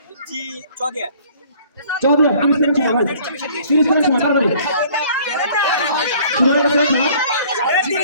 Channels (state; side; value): inverted; both; correlation -0.54